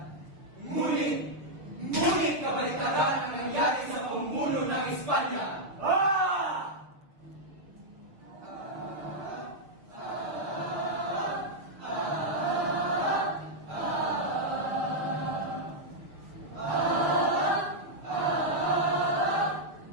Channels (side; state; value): left; late; 6.6 ms